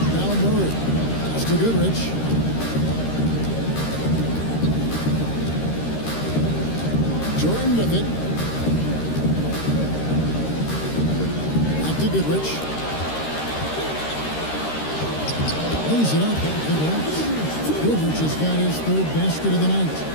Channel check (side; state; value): right; late; 13 ms